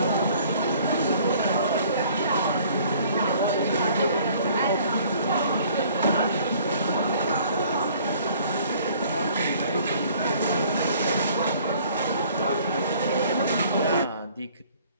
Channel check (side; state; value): both; inverted; correlation -0.56